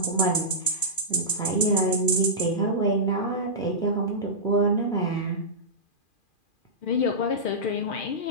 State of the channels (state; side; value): late; right; 2.4 ms